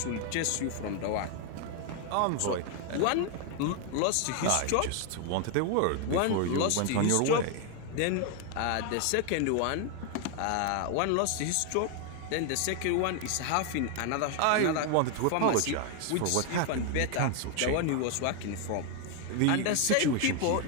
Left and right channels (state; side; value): different; both; correlation 0.01